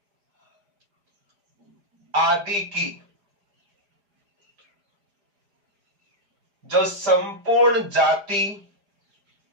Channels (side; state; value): left; late; 4.9 ms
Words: आदि की जो संपूर्ण जाति